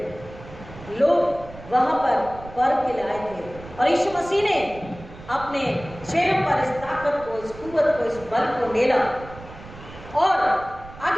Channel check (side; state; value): right; noise; rumble, 17 dB below the sound